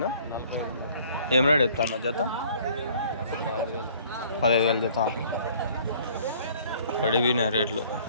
ఏం రేట్ చెప్తాను జత? 15,000 జత. పడిపోయినాయి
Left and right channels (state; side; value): inverted; both; correlation -0.56